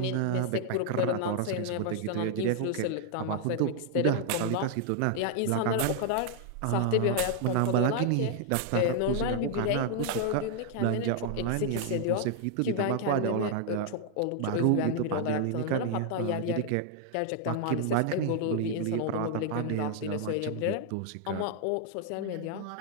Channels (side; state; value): both; different; correlation 0.00